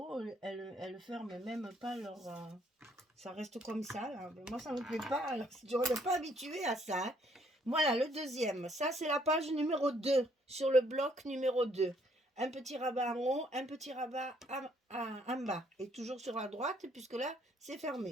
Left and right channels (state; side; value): normal; both; correlation 0.66